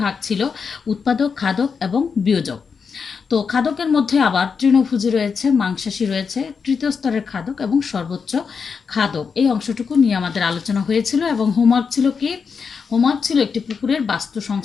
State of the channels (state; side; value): quieter; right; 5.8 dB